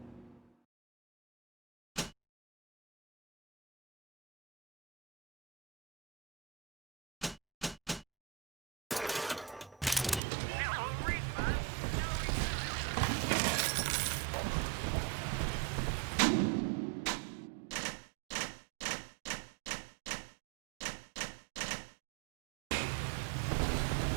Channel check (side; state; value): left; drops out; at 10.2 s